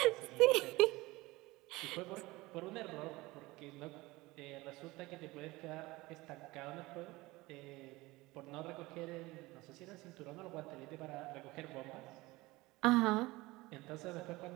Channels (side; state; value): left; quieter; 20.8 dB